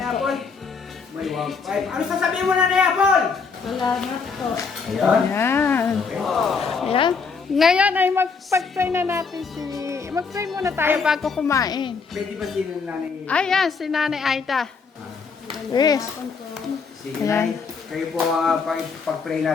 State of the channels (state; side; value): quieter; right; 5.2 dB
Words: Apple? May 1.5. Ano sasabihin mo, Nanay Apple? Salamat po. Ayan. Yan. Ayan. Ngayon ay mag-pray na natin mag-pray muna tayo bago kumain. Pwede ba si Nanay? Ayan, si Nanay Aida. Yes. Sige, Nay. Kayo po pag-pray